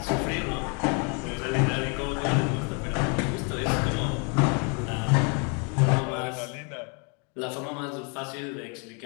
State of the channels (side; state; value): right; quieter; 36.1 dB